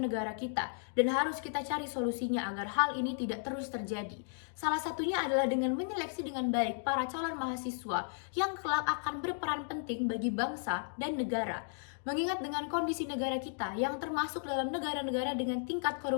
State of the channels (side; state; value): right; silent; digital silence